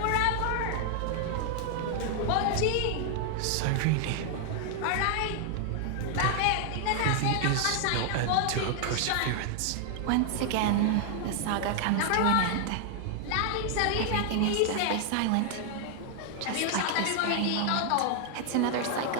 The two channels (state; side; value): different; both; correlation 0.00